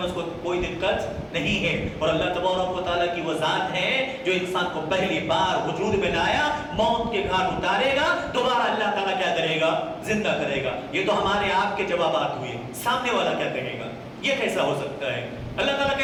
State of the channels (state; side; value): identical; both; correlation 1.00